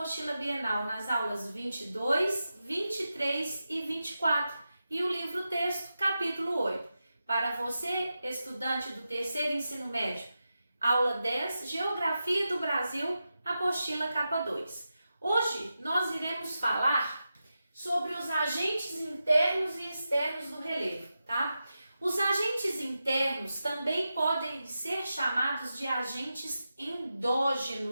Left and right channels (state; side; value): inverted; both; correlation -0.90